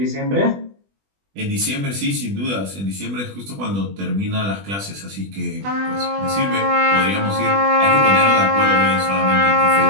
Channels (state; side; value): late; left; 20 ms